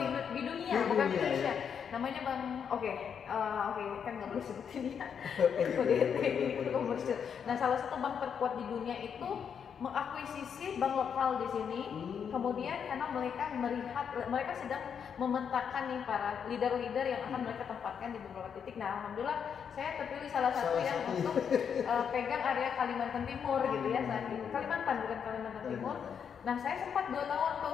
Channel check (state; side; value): quieter; right; 7.4 dB